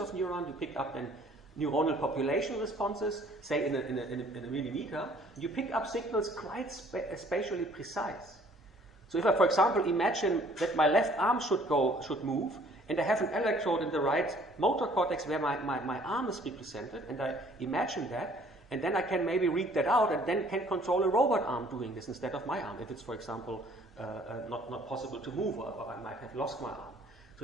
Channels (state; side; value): normal; both; correlation 0.57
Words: neurons, you pick up then neuronal population responses, say in a millimeter, you pick up signals quite spatially precise. So if I, for example, imagine that my left arm should move, and I have an electrode in the right motor cortex where my arm is represented, and I imagine that, and then I can maybe read that out, and then can control a robot arm doing this instead of my arm, if it's, for example, not possible to move, or I might have lost my arm.